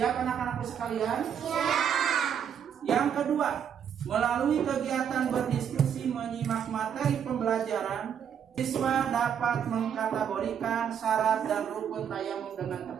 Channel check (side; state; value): left; quieter; 8.3 dB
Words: anak-anakku sekalian? Siap. Yang kedua, melalui kegiatan berdiskusi menyimak materi pembelajaran, siswa dapat mengkategorikan syarat dan rukun tayamum dengan